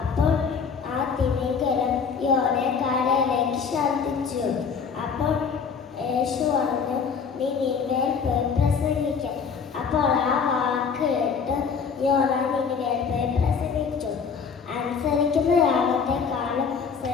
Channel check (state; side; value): quieter; right; 6.0 dB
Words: അപ്പോൾ ആ തിമിംഗലം യോനയെ കരയിലേക്ക് ഛർദ്ദിച്ചു. അപ്പോൾ യേശു പറഞ്ഞു, നീ നിന്നേൽ പോയി പ്രസംഗിക്കാൻ. അപ്പോൾ ആ വാക്ക് കേട്ട് യോന നിന്നേൽ പോയി പ്രസംഗിച്ചു. അനുസരിക്കുന്ന യാഗത്തെ